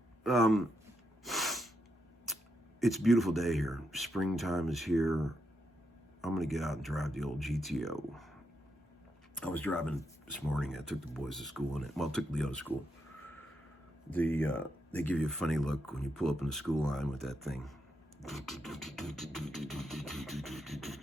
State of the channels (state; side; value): normal; both; correlation 0.81